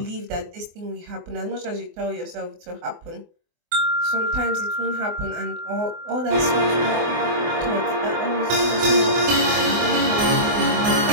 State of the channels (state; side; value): late; left; 24 ms